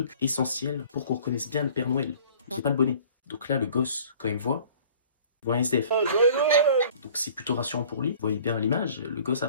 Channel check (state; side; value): inverted; both; correlation -0.50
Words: essentiel pour qu'on reconnaisse bien le Père Noël. J'ai pas le bonnet. Donc là, le gosse, quand il me voit un SDF. Joyeux Noël. Donc c'est plutôt rassurant pour lui. Vous voyez bien à l'image, le gosse a